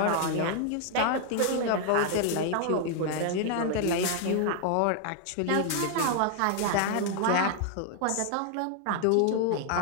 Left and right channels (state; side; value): different; both; correlation 0.00